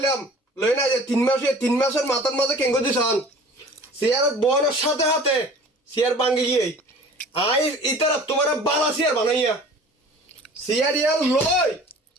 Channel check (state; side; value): normal; both; correlation 0.45